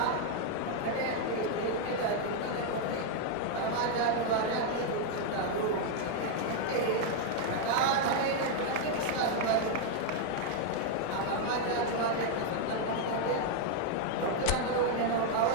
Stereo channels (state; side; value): different; both; correlation 0.00